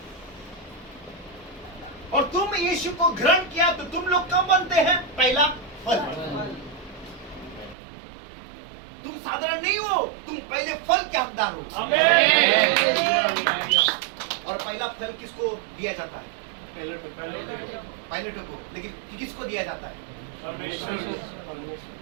और तुम यीशु को ग्रहण किया तो तुम लोग कब बनते हैं? पहला फल। तुम साधारण नहीं हो, तुम पहले फल के हकदार हो। आमीन। और पहला फल किसको दिया जाता है? पायलटों को। लेकिन किसको दिया जाता है? परमेश्वर।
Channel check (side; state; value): left; drops out; at 7.8 s